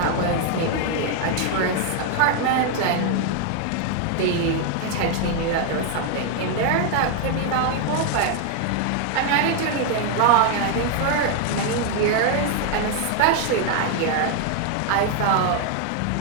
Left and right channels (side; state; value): both; different; correlation 0.00